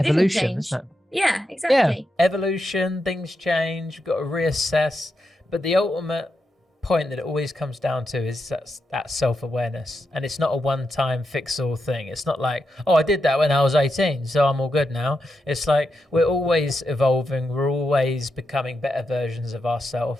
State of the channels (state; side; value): normal; both; correlation 0.85